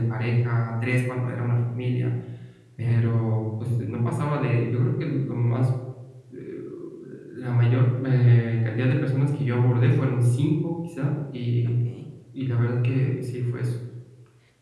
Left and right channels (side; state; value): both; identical; correlation 1.00